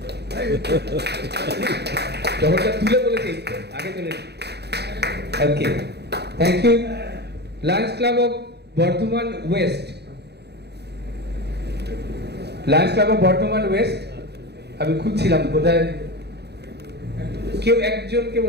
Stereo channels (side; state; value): left; late; 0.48 ms